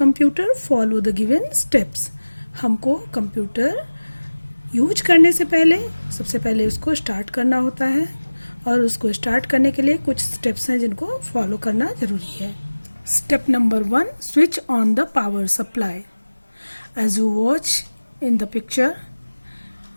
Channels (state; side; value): inverted; both; correlation -1.00